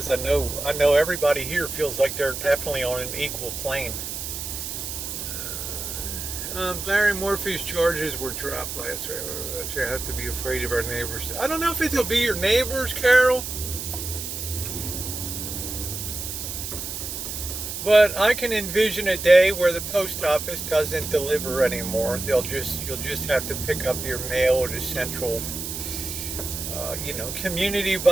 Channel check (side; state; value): right; noise; hiss, 6 dB below the sound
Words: I know everybody here feels like they're definitely on an equal plane. Barry Morphy's charges were dropped last week. You have to be afraid of our neighbors. I don't know if it'll be your neighbors, Carol, but I can envision a day where the post office doesn't deliver anymore. You'll just have to pick up your mail at a central, community